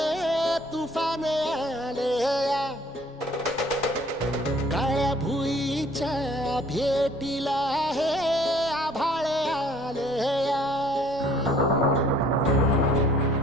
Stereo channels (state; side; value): normal; both; correlation 0.57